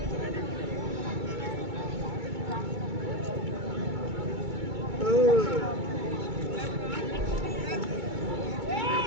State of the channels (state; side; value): late; left; 2.3 ms